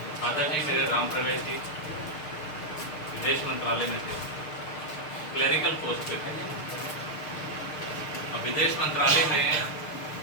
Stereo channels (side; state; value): right; late; 6.6 ms